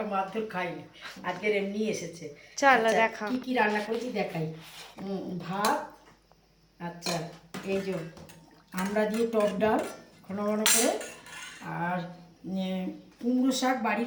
মারধর খাইনি, আজকের এমনি এসেছে। চলো আচ্ছা, দেখা। কি কি রান্না করেছি দেখাই। ভাত, আচ্ছা এই যে আমরা দিয়ে টক ডাল ঘন ঘন করে, আর কুমড়ো শাক,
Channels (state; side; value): identical; both; correlation 1.00